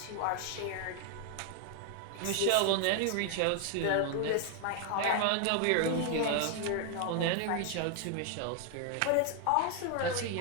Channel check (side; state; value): both; different; correlation 0.00